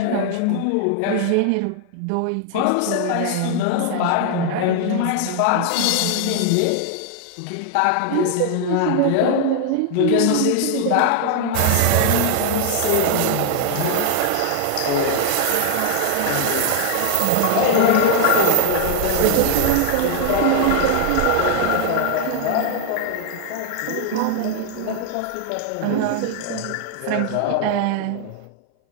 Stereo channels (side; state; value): both; different; correlation 0.00